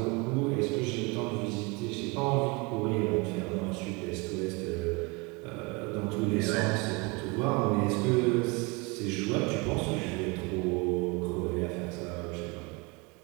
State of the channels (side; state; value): left; quieter; 27.4 dB